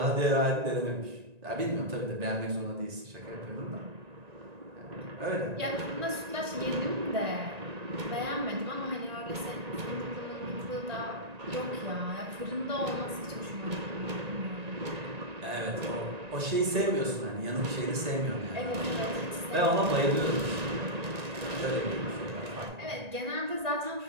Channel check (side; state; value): left; late; 1.9 ms